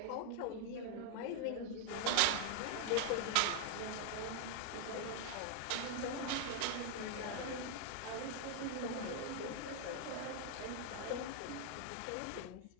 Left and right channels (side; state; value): both; different; correlation 0.00